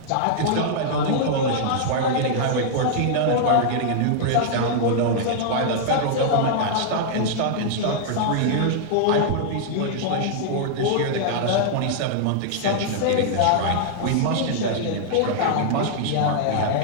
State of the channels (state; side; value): different; both; correlation -0.01